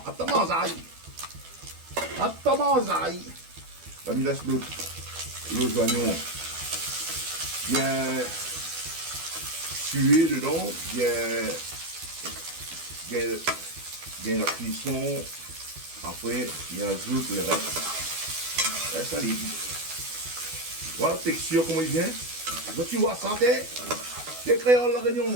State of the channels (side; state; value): left; late; 12 ms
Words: Attends, manzaï. Attends, manzaï. Là, il laisse les oignons bien tuer dedans, bien la cuisson. Après, il ajoute le reste. Et ça libre. Voilà la texture, comment il vient. Tu vois ça, t'es créole la